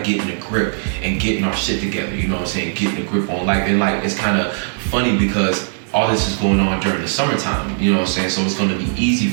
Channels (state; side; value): silent; left; digital silence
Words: getting a grip and getting our shit together, you know what I'm saying? Getting a grip on life. And like, it's kind of funny because all this is going on during the summertime, you know what I'm saying? So it's going to be easy